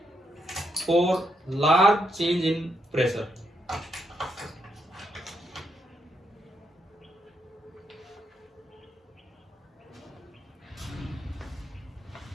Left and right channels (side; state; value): both; normal; correlation 0.79